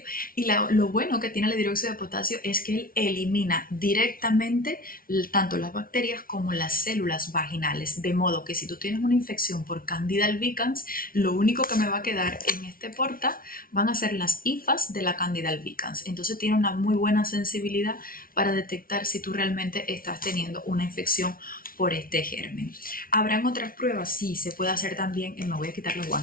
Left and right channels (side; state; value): right; late; 0.42 ms